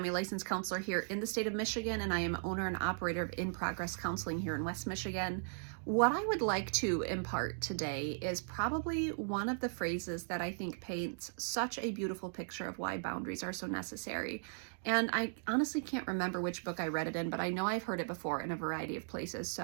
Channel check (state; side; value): silent; left; digital silence